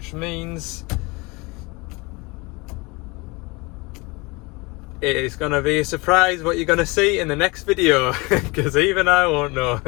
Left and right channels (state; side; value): quieter; right; 25.8 dB